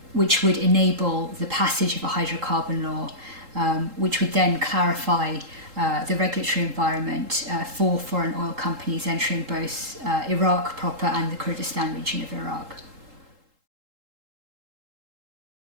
which would enable the passage of a hydrocarbon law, which would then clarify the regulatory environment for foreign oil companies entering both Iraq proper and the Kurdistan region of Iraq.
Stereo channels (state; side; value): late; left; 3.8 ms